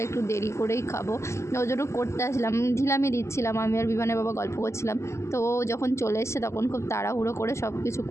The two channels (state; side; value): late; right; 0.13 ms